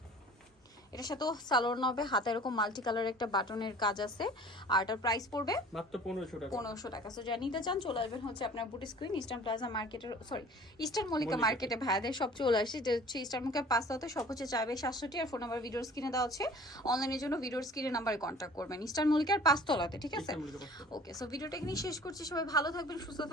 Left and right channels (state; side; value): normal; both; correlation 0.47